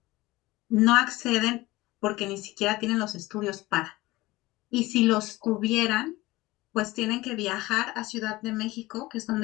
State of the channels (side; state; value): right; quieter; 19.4 dB